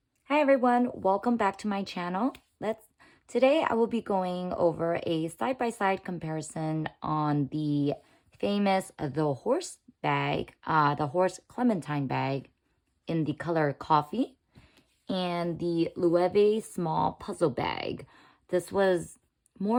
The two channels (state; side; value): identical; both; correlation 1.00